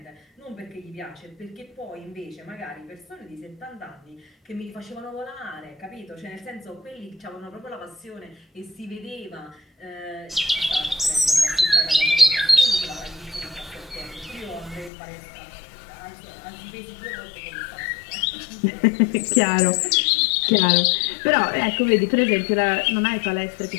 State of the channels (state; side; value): drops out; right; at 14.9 s